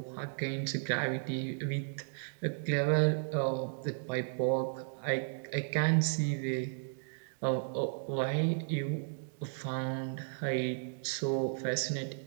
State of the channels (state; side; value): silent; left; digital silence